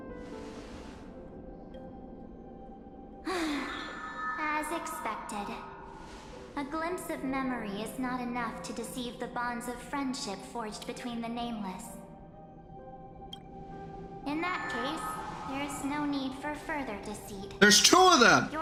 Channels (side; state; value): both; identical; correlation 1.00